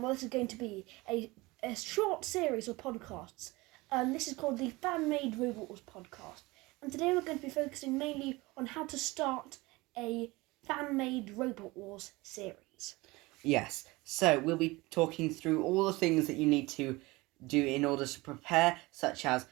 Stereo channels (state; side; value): quieter; left; 22.1 dB